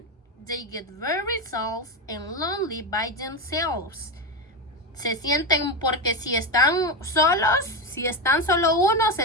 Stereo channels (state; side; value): normal; both; correlation 0.14